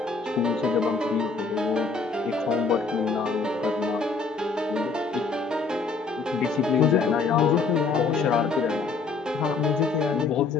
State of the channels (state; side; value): quieter; right; 4.5 dB